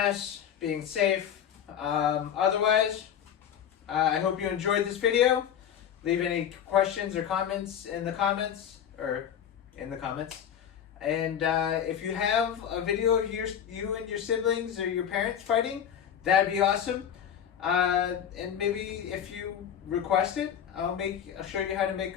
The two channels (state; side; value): quieter; right; 9.0 dB